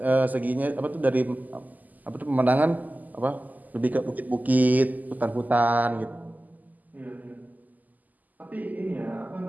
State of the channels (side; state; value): left; late; 0.081 ms